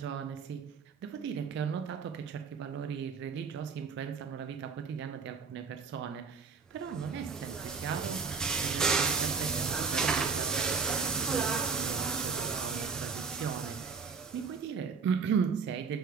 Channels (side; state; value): left; quieter; 5.4 dB